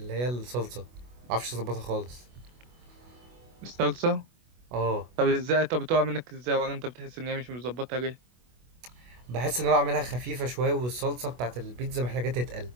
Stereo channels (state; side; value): late; left; 24 ms